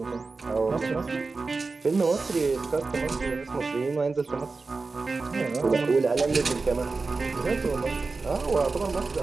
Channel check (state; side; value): quieter; left; 4.0 dB